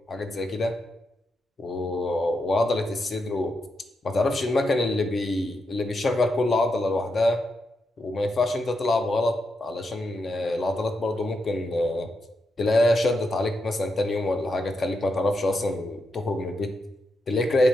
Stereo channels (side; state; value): both; normal; correlation 0.84